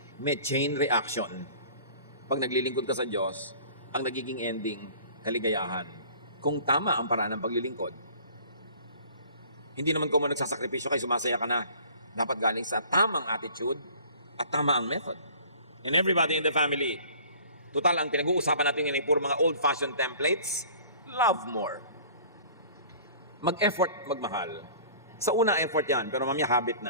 May chain reaction. Pag naglilingkod ka sa Diyos, ang nagiging ending, kaligayahan. Kung tama ang paraan ng paglilingkod. Hindi naman kung nagsasakripisyo kayo, sumasaya ka na. Dapat galing sa tamang attitude at tama ang method. And everybody in the family, total ang pinag-uusapan natin ngayon ay puro mga old-fashioned templates, love more. Mag-effort, magmahal. Sa una, effort yan, pero mamaya habit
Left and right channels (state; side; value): inverted; both; correlation -0.48